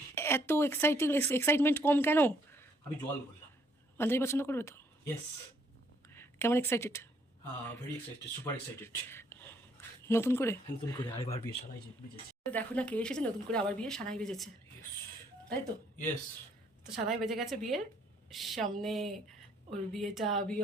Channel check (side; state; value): both; normal; correlation 0.67